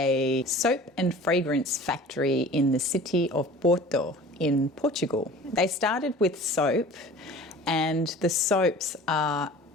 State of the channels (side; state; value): both; normal; correlation 0.43